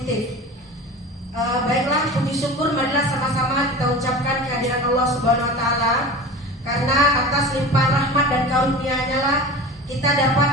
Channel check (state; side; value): normal; both; correlation 0.34